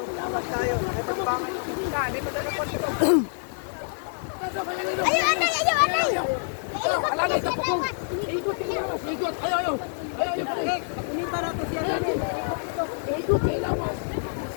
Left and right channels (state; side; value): silent; right; 60 dB below the other